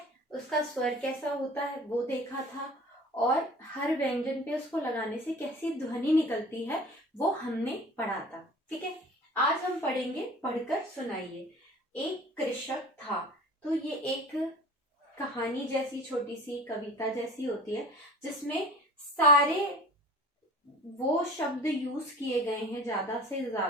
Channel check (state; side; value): normal; both; correlation 0.43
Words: उसका स्वर कैसा होता है वो देखा था, और हर व्यंजन पे उसको लगाने से कैसी ध्वनि निकलती है वो हमने पढ़ा था, ठीक है। आज हम पढ़ेंगे, पढ़कर सुनाइए। एक कृषक था। तो ये एक कहानी जैसी, छोटी सी कविता जैसी होती है, जिसमें सारे वो शब्द यूज किए गए हैं ज्यादा से